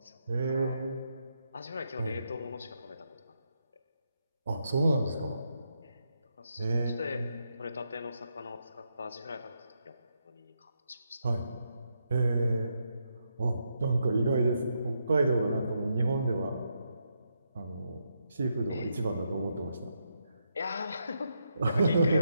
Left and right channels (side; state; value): both; inverted; correlation -0.81